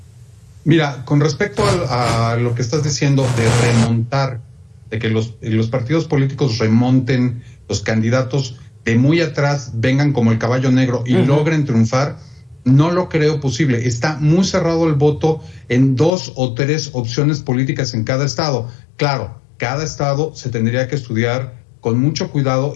Mira, con respecto a lo que estás diciendo de remontar, de que los partidos políticos remonten, los candidatos de muy atrás vengan como el caballo negro y logren triunfar, no lo creo posible. Está muy cerrado el voto en 2 o 3 opciones políticas en cada estado. Claro, cada estado se tendría que estudiar con mucho cuidado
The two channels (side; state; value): right; drops out; at 16.1 s